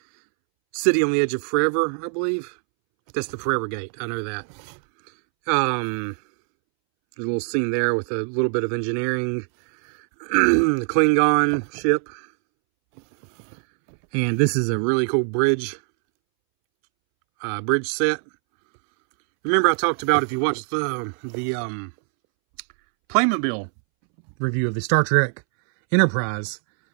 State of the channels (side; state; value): left; silent; 64 dB below the other